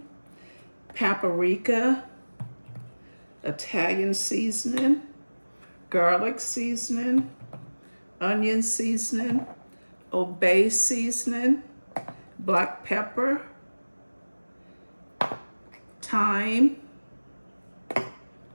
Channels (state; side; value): inverted; both; correlation -1.00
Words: paprika, Italian seasoning, garlic seasoning, onion seasoning, obey seasoning, black pepper, thyme,